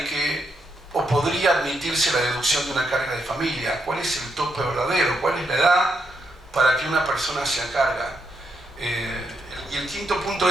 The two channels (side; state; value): both; normal; correlation 0.80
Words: que o podría admitirse la deducción de una carga de familia. ¿Cuál es el tope verdadero? ¿Cuál es la edad para que una persona se carga? Y el quinto punto